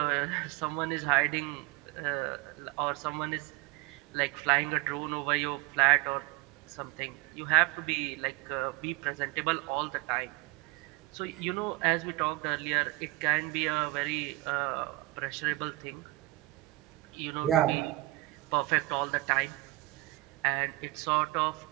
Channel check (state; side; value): quieter; left; 20.9 dB